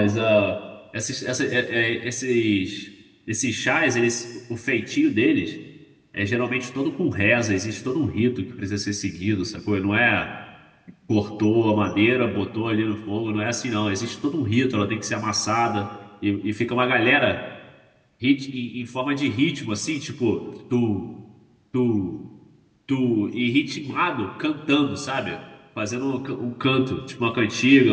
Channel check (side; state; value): both; identical; correlation 1.00